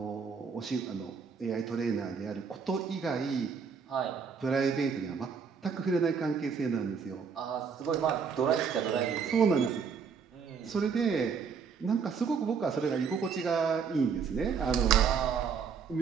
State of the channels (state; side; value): quieter; left; 6.2 dB